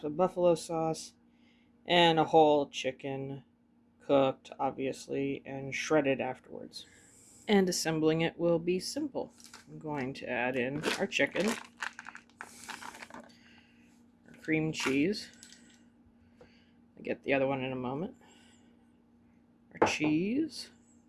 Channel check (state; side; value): identical; both; correlation 1.00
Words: of buffalo sauce, and a whole chicken, cooked obviously, and shredded afterwards. And assembling it will be simple. I'm going to add in our chicken, cream cheese. I'll get the other one in a moment. Our cheese,